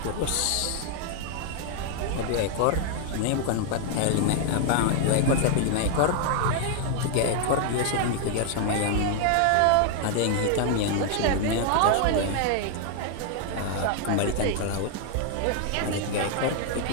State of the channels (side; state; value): both; different; correlation 0.00